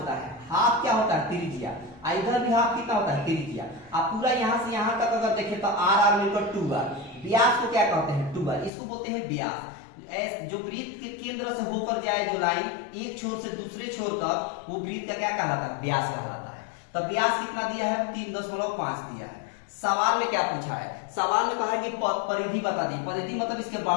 है। हाफ क्या होता है, त्रिज्या। इधर भी हाफ कितना होता है, त्रिज्या। आप पूरा यहां से यहां तक अगर देखें तो r मिलकर 2r। व्यास को क्या कहते हैं, 2r, इसको बोलते हैं व्यास। जो वृत्त के केंद्र से होकर जाए जो लाइन एक छोर से दूसरे छोर तक, वो वृत्त का क्या कहलाता है, व्यास कहलाता है। तो व्यास कितना दिया है, 3.5 दिया है। सवाल में क्या पूछा है, सवाल में कहा है कि परिधि बता दी। परिधि मतलब इसके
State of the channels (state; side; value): drops out; right; at 8.7 s